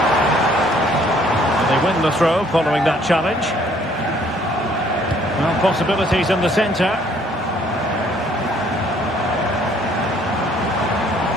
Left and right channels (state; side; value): normal; both; correlation 0.62